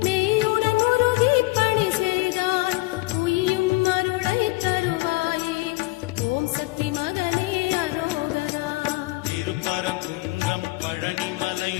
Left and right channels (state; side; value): quieter; right; 22.6 dB